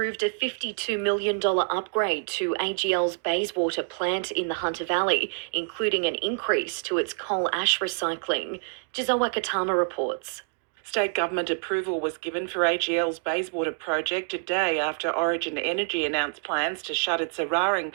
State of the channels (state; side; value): silent; left; 57 dB below the other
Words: a $52 million upgrade to AGL's Bayswater plant in the Hunter Valley, including an increase to its coal ash recycling. Giselle Wakatama reports. State government approval was given for AGL's Bayswater project a day after Origin Energy announced plans to shut its Eraring